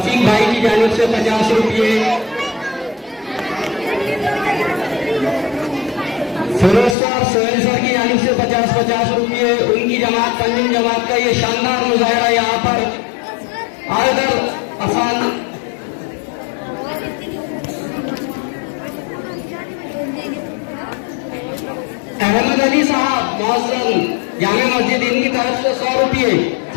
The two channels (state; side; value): drops out; right; at 7.0 s